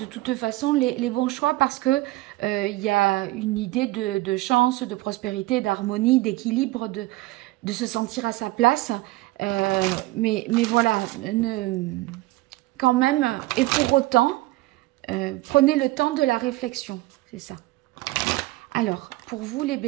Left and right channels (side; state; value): left; quieter; 19.2 dB